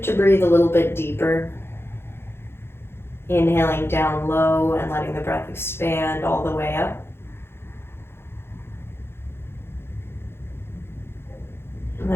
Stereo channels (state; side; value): late; right; 0.11 ms